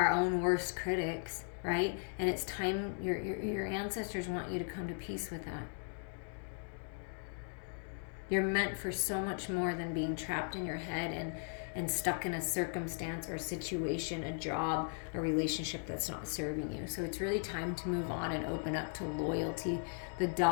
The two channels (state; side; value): silent; right; 53 dB below the other